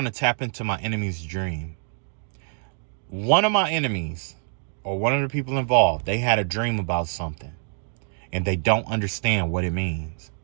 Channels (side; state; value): left; silent; 56 dB below the other